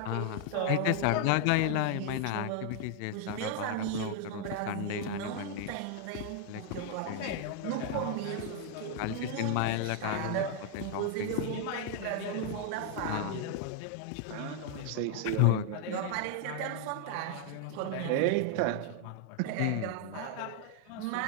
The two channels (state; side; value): different; both; correlation 0.00